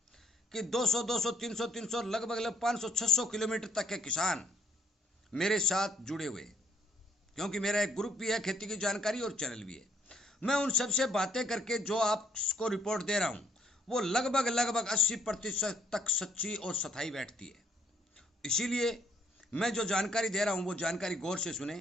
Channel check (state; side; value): normal; both; correlation 0.67